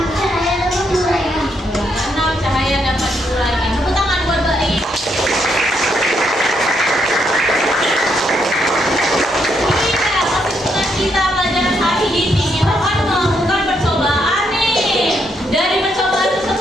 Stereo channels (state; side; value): normal; both; correlation 0.77